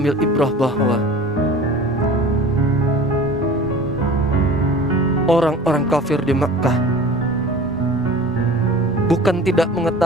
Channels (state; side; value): normal; both; correlation 0.41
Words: ibrah bahwa orang-orang kafir di Makkah bukan tidak